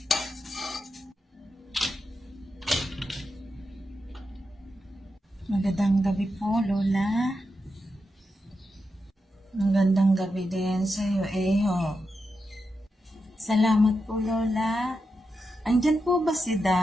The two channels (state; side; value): normal; both; correlation 0.87